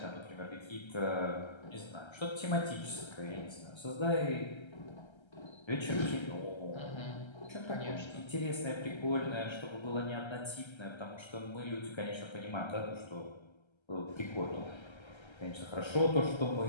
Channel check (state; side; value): late; right; 1.3 ms